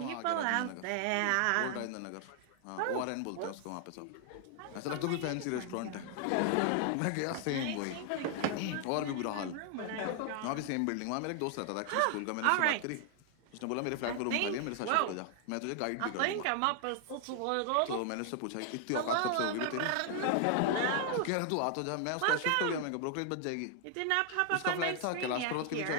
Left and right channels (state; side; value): different; both; correlation 0.00